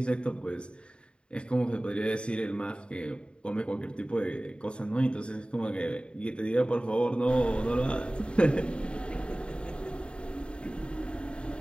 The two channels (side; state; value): right; late; 0.053 ms